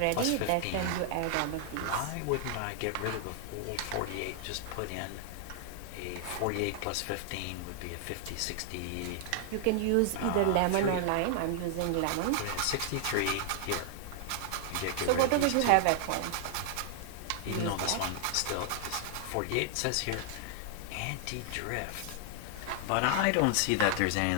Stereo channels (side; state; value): both; different; correlation 0.00